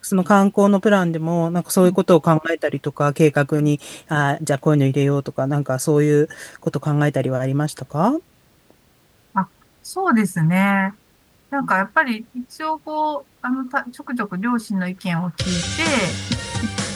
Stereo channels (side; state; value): both; identical; correlation 1.00